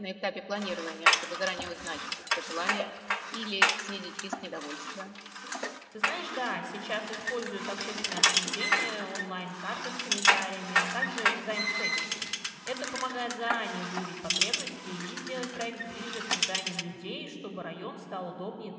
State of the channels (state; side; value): identical; both; correlation 1.00